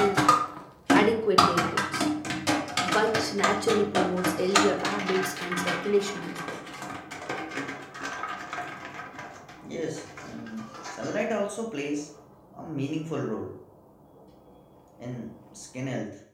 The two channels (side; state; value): both; identical; correlation 1.00